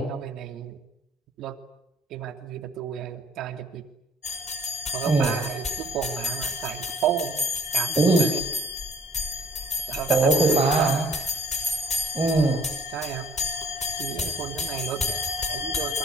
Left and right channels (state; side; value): normal; both; correlation 0.55